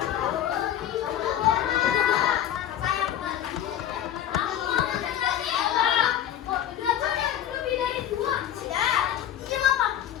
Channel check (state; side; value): quieter; right; 10.9 dB